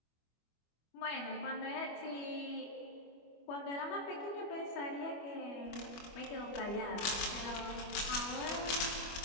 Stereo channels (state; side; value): late; right; 25 ms